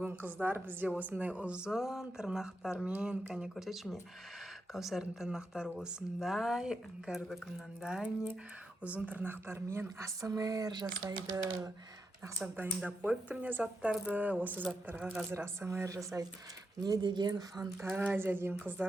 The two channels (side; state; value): both; normal; correlation 0.85